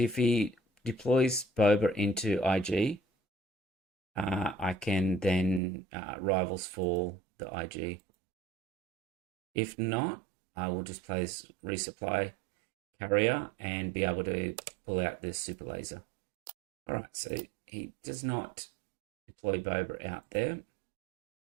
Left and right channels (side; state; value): left; drops out; at 5.6 s